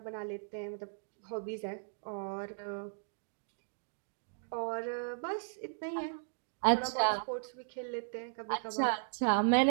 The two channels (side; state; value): left; silent; digital silence